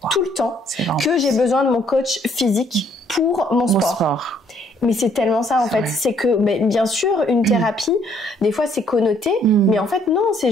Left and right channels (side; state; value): both; normal; correlation 0.66